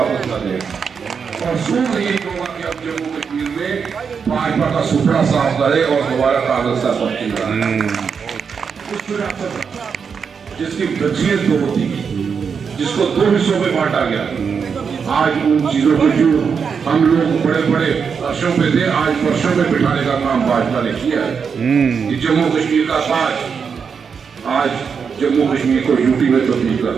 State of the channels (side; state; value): left; quieter; 6.2 dB